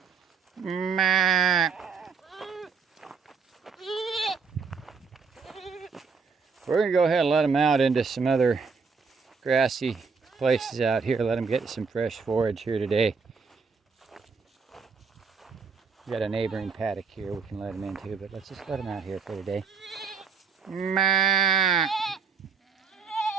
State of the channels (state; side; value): quieter; left; 5.4 dB